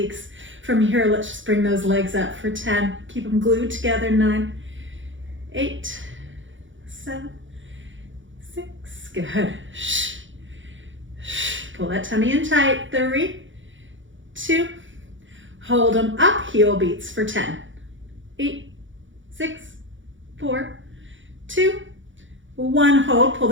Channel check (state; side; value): late; left; 0.56 ms